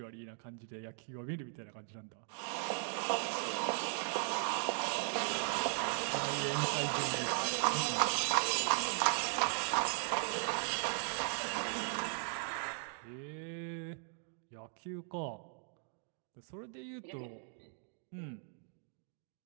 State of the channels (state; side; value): silent; left; 52 dB below the other